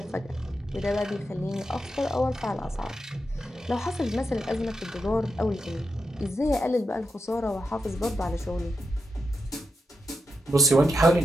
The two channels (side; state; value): both; normal; correlation 0.86